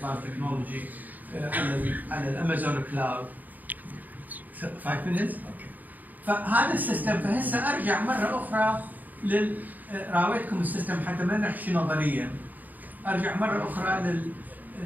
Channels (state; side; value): late; left; 0.083 ms